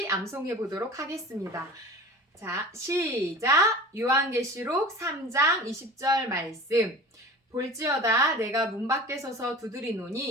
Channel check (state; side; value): normal; both; correlation 0.38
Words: 암송해 보도록 하겠습니다. 자, 시작! 요한계시록 3장 20절 말씀. 볼지어다 내가 문 밖에 서서